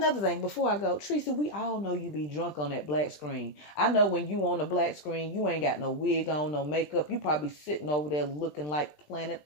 thing, before I go, Treecy, we all know you be drunk on that black screen. I know when you on the black screen, you ain't got no wig on, no makeup. You probably sitting over there looking like Planet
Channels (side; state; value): right; late; 20 ms